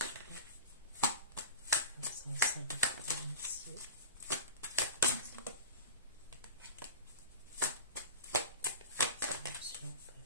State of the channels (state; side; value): inverted; both; correlation -0.33